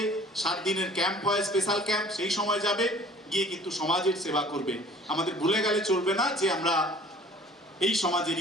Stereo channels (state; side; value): normal; both; correlation 0.50